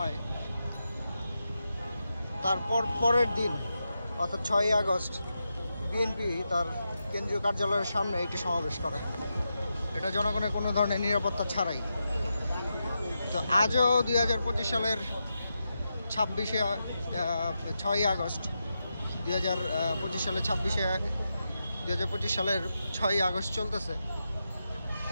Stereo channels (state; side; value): inverted; both; correlation -0.88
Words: তারপর পরের দিন অর্থাৎ 6ই আগস্ট বিএনপি তার কেন্দ্রীয় কার্যালয়ের সামনে একটি সমাবেশ করে, এটা জনগণের কোনো ধরনের নিরাপত্তা ছাড়াই। তো আজও 2025 সালের 6ই আগস্ট 2025 সালের 6ই আগস্ট চলতেছে। তো